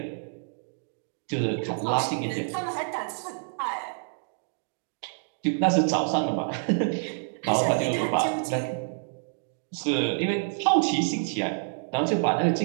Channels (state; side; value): silent; left; digital silence